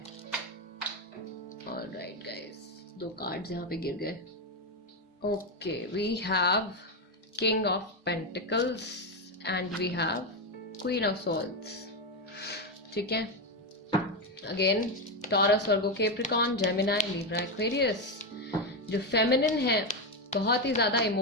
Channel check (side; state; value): both; normal; correlation 0.09